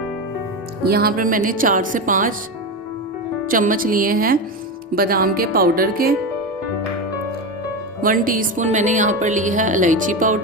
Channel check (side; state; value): both; normal; correlation 0.17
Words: यहाँ पर मैंने 4 से 5 चम्मच लिए हैं बादाम के पाउडर के। 1 टीस्पून मैंने यहाँ पर ली है इलायची